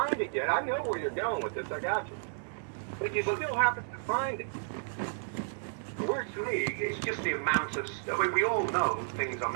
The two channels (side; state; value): left; silent; digital silence